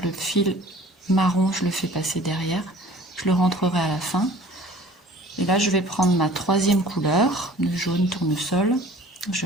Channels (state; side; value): normal; both; correlation 0.48